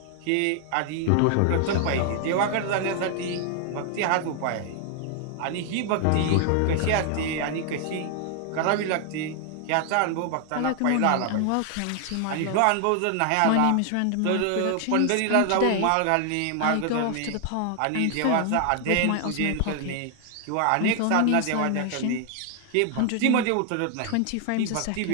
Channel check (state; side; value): different; both; correlation 0.00